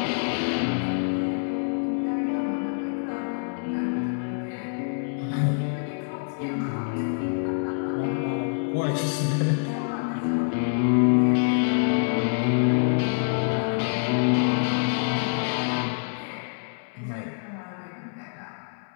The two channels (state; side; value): silent; right; 61 dB below the other